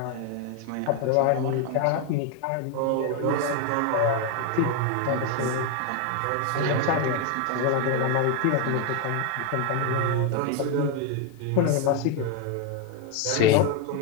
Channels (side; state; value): both; different; correlation 0.01